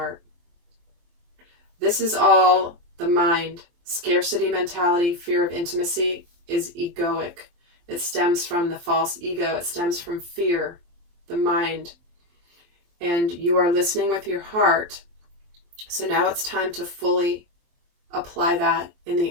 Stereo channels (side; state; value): left; late; 23 ms